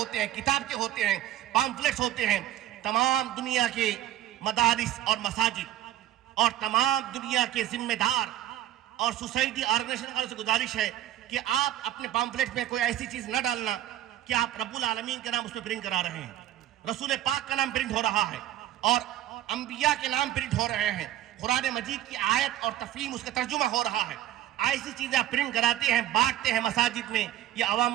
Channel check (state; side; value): quieter; left; 13.0 dB